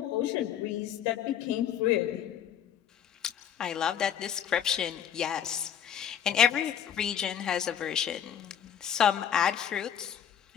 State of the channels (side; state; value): right; quieter; 9.3 dB